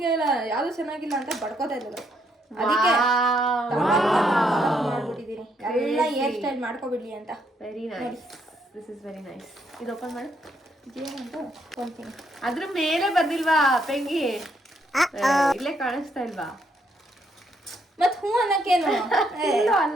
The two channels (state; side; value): normal; both; correlation 0.74